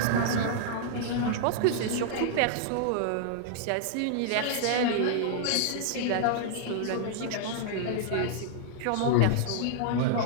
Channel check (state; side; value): different; both; correlation -0.01